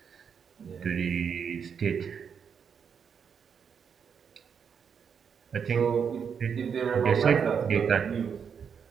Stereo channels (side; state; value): left; quieter; 6.9 dB